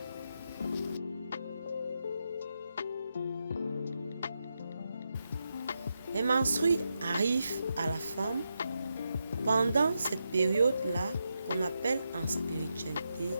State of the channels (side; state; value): both; inverted; correlation -0.85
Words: Les menstrues arrivent à la femme pendant cette période-là qu'on appelle en spiritualité